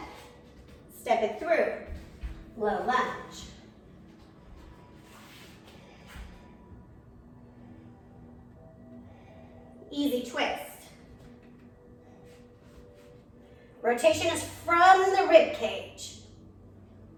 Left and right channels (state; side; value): identical; both; correlation 1.00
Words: Step it through. Low lunge. Easy twist. Rotation is from the rib cage.